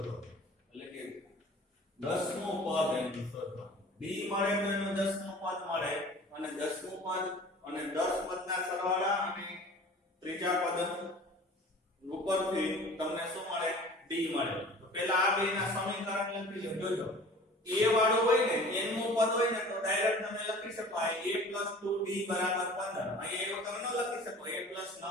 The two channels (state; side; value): normal; both; correlation 0.44